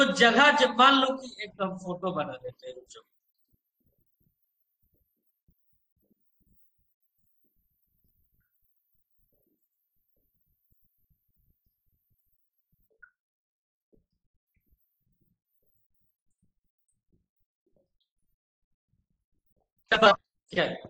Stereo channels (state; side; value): identical; both; correlation 1.00